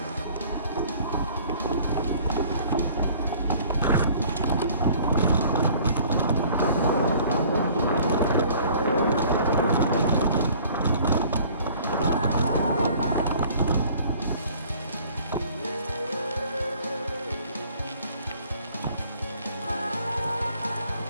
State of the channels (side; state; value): both; inverted; correlation -0.53